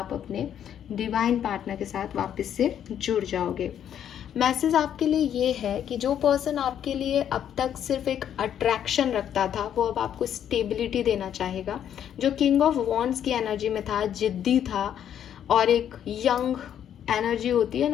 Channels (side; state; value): right; quieter; 9.7 dB